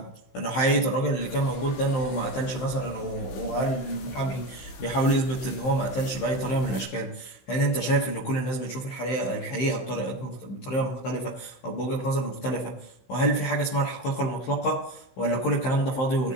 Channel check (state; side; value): late; right; 16 ms